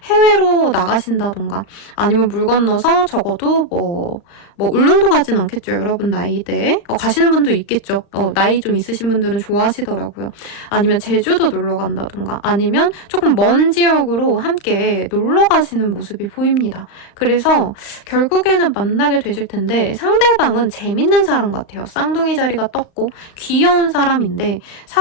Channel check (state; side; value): late; right; 36 ms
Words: 해외로 나가신다던가 아니면 물 건너서 적어도 뭐 울릉도 가진 않겠죠. 여러분 나이대에. 가시는 분도 있겠죠. 나이 좀 있으신 분들은 좋아하시더라고요. 아니면 제주도 놀러 간다던가 아니면 조금 먼 지역으로 함께 놀러 가시는 모습이 보입니다. 그래서 결국에는 만나게 되실 텐데 상대방은 재밌는 사람 같아요. 쌍둥이 자리가 떴고 귀여운 사람인데